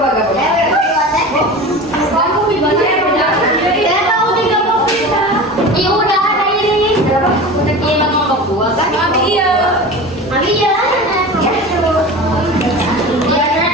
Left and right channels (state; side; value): normal; both; correlation 0.33